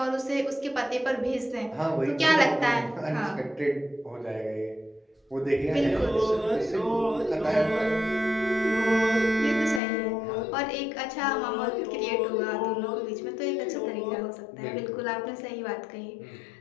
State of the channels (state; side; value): drops out; right; at 9.8 s